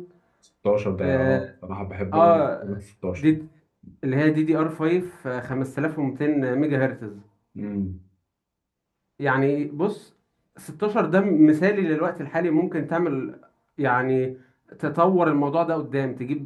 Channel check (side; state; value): both; identical; correlation 1.00